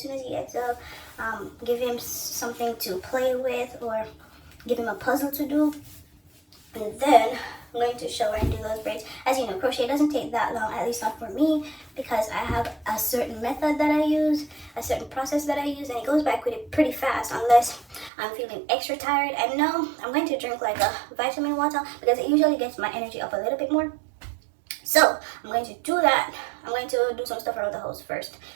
soon as he gets up, give him something to play with, or give him a puzzle to do. And then I'm going to shower and do those braids. As you know, crochet doesn't take that long, at least not for me, because I have a certain method that I use, a certain process that I use, and it goes by pretty fast unless I'm feeling extra tired. And no, I'm going to drink like a vitamin water because it usually gets my energy up a little bit more. So I'm going to do that. I'm going to do some stuff around the house first,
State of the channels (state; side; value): drops out; left; at 18.1 s